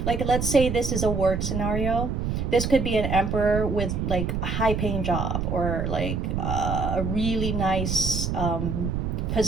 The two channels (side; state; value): right; noise; rumble, 1 dB below the sound